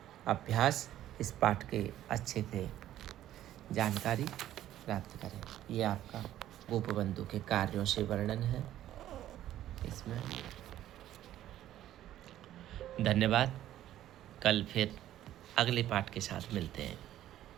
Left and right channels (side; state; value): left; quieter; 12.8 dB